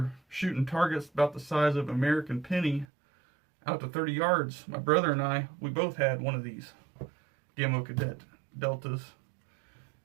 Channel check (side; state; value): left; drops out; at 2.9 s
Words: shooting targets about the size of American penny out to 30 yards. My brother and I, we both had one of these Gamma Cadet Deltas.